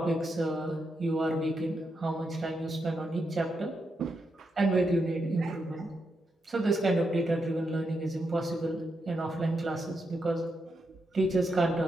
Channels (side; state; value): both; normal; correlation 0.83